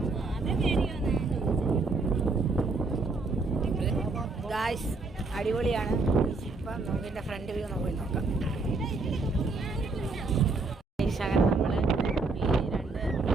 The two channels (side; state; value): left; quieter; 3.7 dB